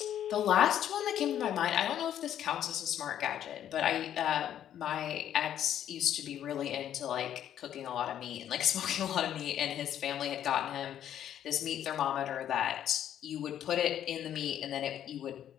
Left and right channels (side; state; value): right; quieter; 10.5 dB